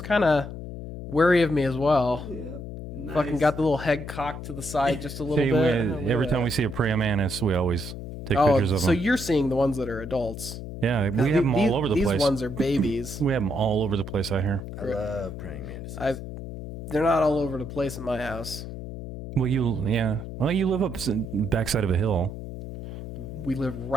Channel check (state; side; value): noise; left; hum, 9 dB below the sound